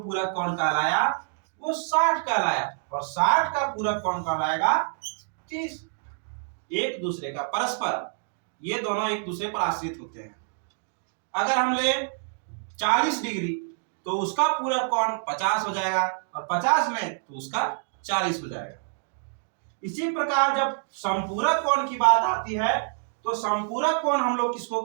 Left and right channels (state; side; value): silent; left; digital silence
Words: कोण कहलाया वो 60 कहलाया, और 60 का पूरक कोण कहलाएगा 30। एक दूसरे का परस्पर, ये दोनों एक दूसरे पर आश्रित होते हैं। अगर हम ले 40 डिग्री तो उसका पूरक कोण 50 हो जाएगा, और 50 में तो उसका 40 हो जाएगा। इसी प्रकार जब संपूरक कोण की बात आती है, तो संपूरक कोण हम लोग किसको